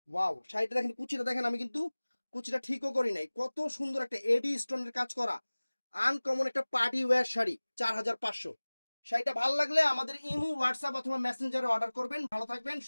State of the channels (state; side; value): inverted; both; correlation -1.00